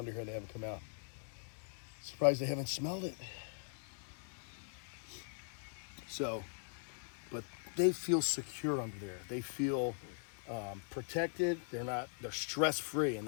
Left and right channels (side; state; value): right; silent; digital silence